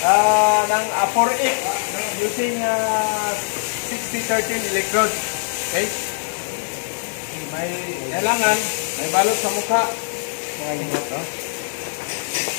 ng 4-8 using 60-13 electrode. Okay? May kailangan, may balot sa mukha. Mga hingot, no?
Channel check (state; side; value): silent; right; digital silence